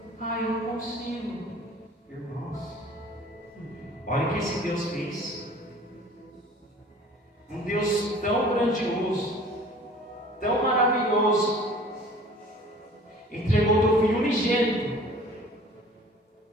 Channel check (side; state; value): both; normal; correlation 0.48